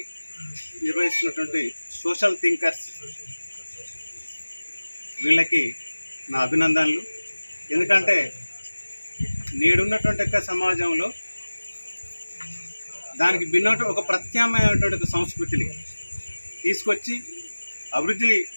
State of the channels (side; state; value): both; inverted; correlation -1.00